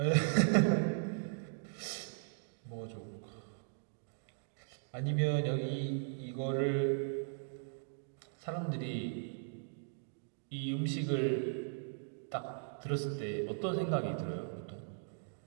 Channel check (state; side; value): silent; left; digital silence